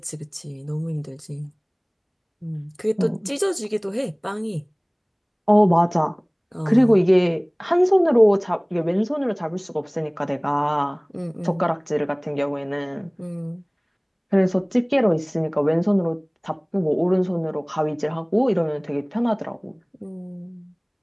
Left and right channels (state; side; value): identical; both; correlation 1.00